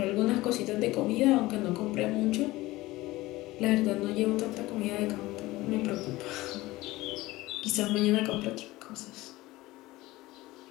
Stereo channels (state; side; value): quieter; right; 18.9 dB